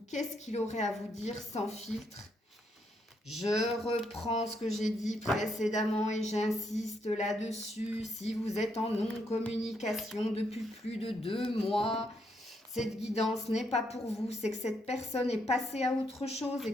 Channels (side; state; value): both; normal; correlation 0.76